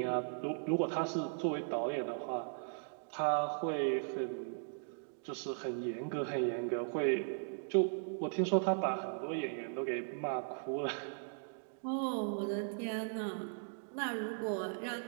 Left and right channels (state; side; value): silent; left; digital silence